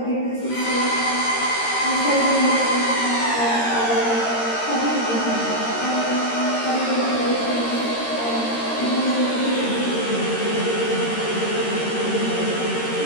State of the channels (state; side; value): late; right; 13 ms